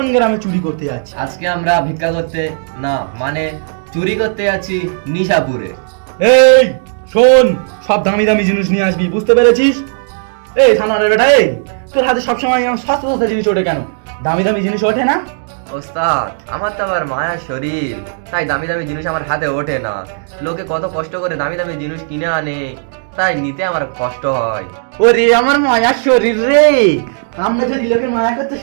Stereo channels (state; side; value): silent; left; digital silence